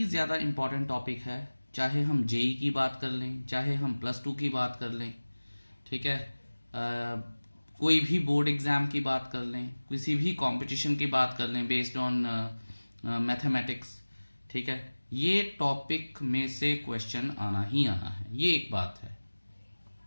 ज़्यादा इम्पॉर्टेंट टॉपिक है, चाहे हम जेई की बात कर लें, चाहे हम +2 की बात कर लें, ठीक है। कोई भी बोर्ड एग्ज़ाम की बात कर लें, किसी भी कंपटीशन की बात कर लें बेस्ड ऑन मैथमेटिक्स, ठीक है। ये टॉपिक में से क्वेश्चन आना ही आना है, ये एक बात है।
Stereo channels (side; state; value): both; inverted; correlation -1.00